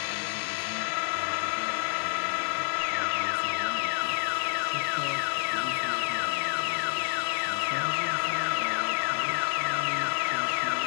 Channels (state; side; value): silent; right; 59 dB below the other